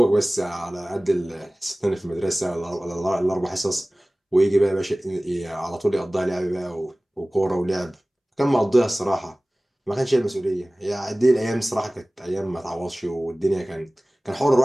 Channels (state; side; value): normal; both; correlation 0.98